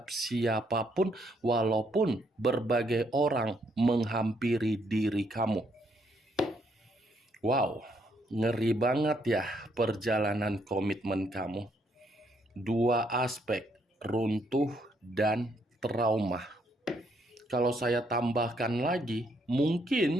siapapun, walaupun berbagai orang menghampiri diri kamu. Wow, ngeri banget ya perjalanan komitmen kamu. Dua aspek, runtuh dan trauma. Kalau saya tambahkan lagi,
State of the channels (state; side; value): normal; both; correlation 0.72